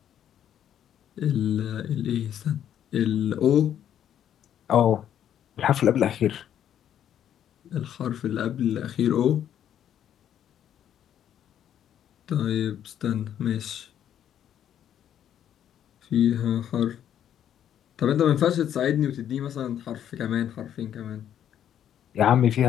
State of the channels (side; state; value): right; quieter; 10.1 dB